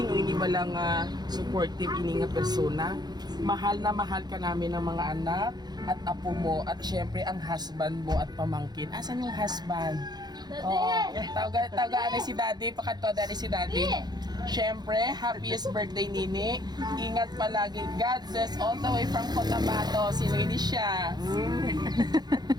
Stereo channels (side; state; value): left; late; 0.20 ms